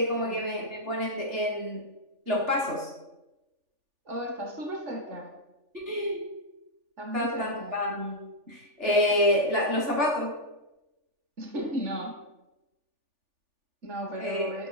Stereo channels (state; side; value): late; left; 3.4 ms